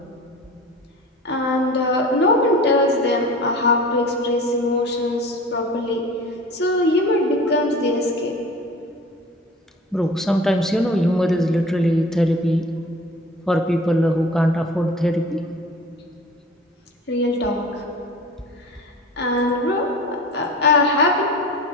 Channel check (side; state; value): both; normal; correlation 0.40